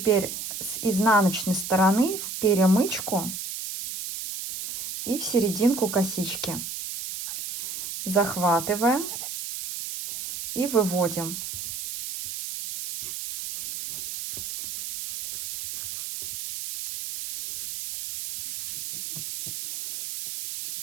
с изнаночной стороны в перемычку и в серединку косички захватываем и выводим.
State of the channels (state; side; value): noise; right; hiss, 7 dB below the sound